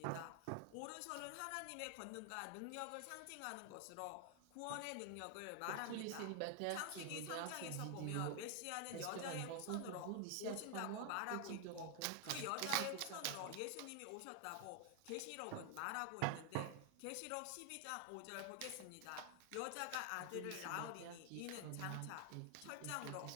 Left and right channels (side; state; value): both; different; correlation 0.00